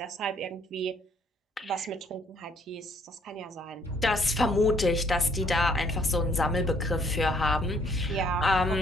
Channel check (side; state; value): both; normal; correlation 0.64